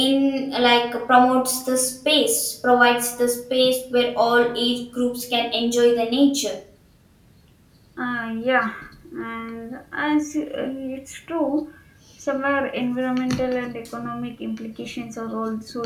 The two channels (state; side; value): identical; both; correlation 1.00